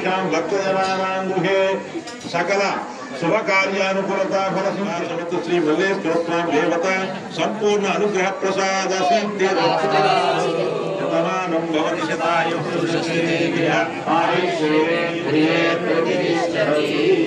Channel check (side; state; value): both; identical; correlation 1.00